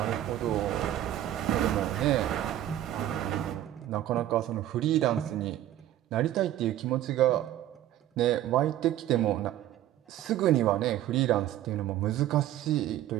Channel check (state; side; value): quieter; left; 12.8 dB